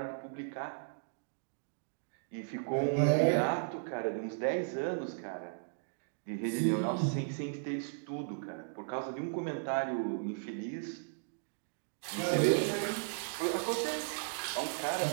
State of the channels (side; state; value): left; silent; digital silence